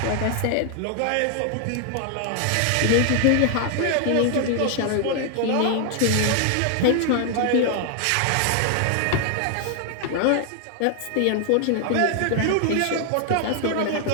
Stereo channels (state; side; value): different; both; correlation 0.00